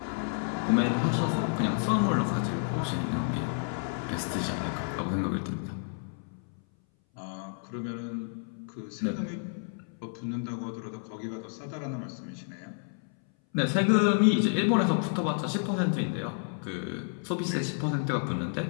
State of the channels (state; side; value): silent; right; 58 dB below the other